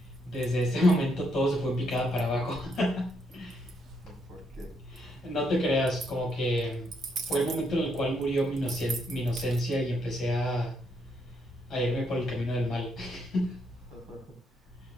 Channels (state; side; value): normal; both; correlation 0.76